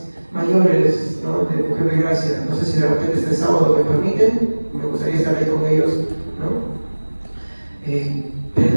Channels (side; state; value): both; inverted; correlation -1.00